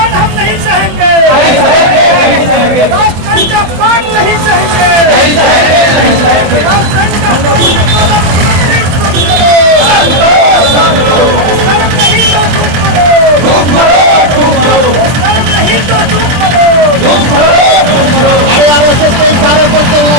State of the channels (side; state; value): left; late; 24 ms